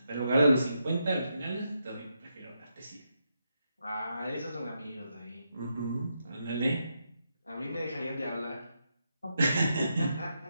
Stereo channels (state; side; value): inverted; both; correlation -0.83